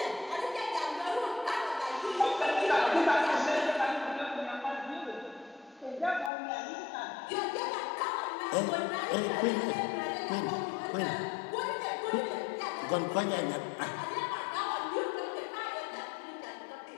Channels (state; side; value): drops out; right; at 6.3 s